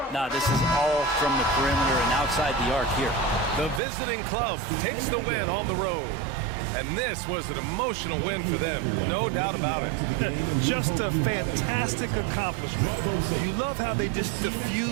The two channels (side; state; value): left; drops out; at 3.8 s